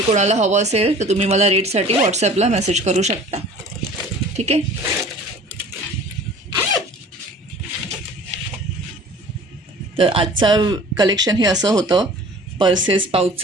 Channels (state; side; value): normal; both; correlation 0.46